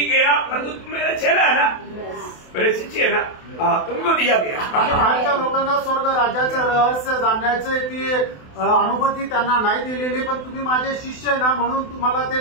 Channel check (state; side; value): late; right; 28 ms